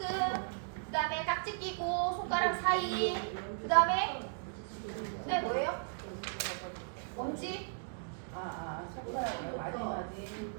그 다음에 깍지 끼고 손가락 사이, 그 다음에 뭐예요? 엄지? 손가락을 마지막에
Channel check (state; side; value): silent; left; digital silence